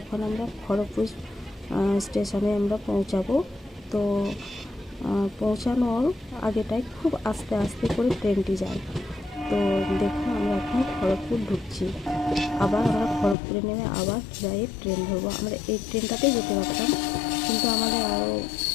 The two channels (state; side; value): drops out; right; at 13.4 s